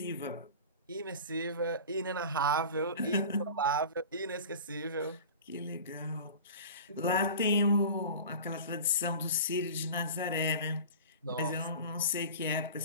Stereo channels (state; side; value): inverted; both; correlation -0.36